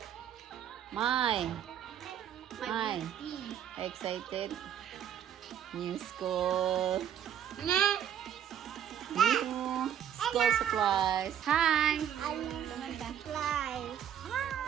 My excited. New school. New school supplies. Hi. Supplies.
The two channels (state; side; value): quieter; left; 9.7 dB